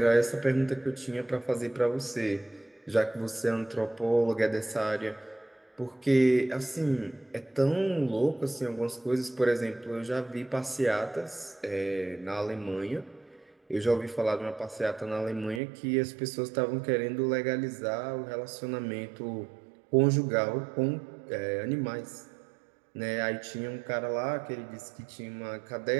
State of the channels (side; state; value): left; drops out; at 15.6 s